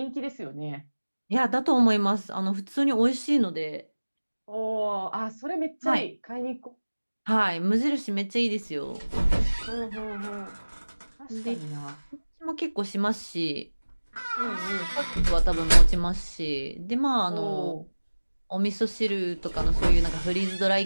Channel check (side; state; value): both; inverted; correlation -1.00